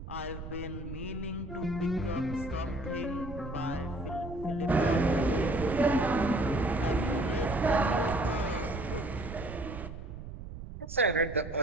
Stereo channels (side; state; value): right; noise; rumble, 10 dB below the sound